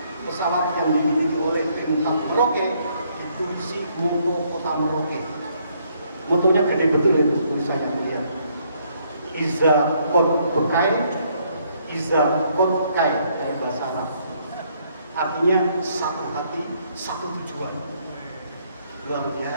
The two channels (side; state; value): both; inverted; correlation -0.69